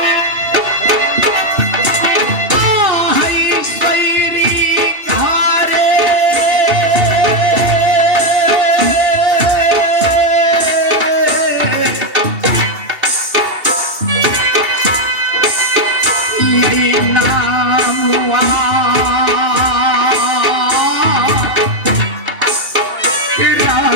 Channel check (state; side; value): late; left; 2.6 ms